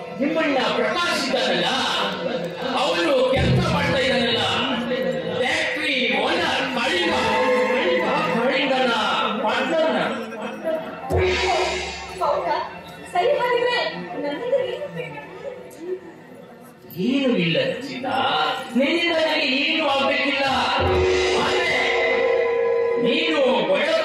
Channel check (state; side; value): identical; both; correlation 1.00